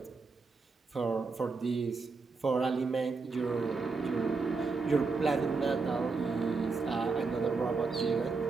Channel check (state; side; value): quieter; left; 4.3 dB